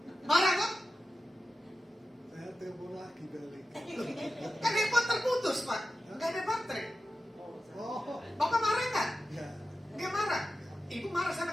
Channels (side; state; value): both; normal; correlation 0.93